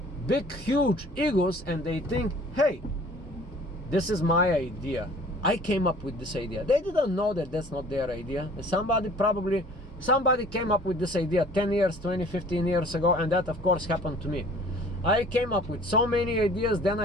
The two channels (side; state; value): both; normal; correlation 0.50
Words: big, huge egos, and they think, hey, this is my idea. I came up with this idea. They didn't know that that's not their idea. Somebody came up with this idea 10 years, 20, 15 years ago, and that of course happened to me. I came up with so many ideas, then